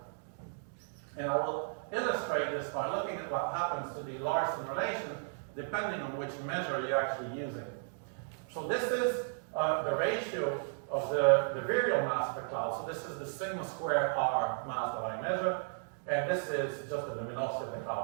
And I will illustrate this by looking at what happens to the Larson relation, depending on which measure you're actually using. So this is the ratio of the virial mass of the cloud. So this is the sigma squared R mass that I measure, and this is just the luminosity of the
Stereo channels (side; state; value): left; silent; digital silence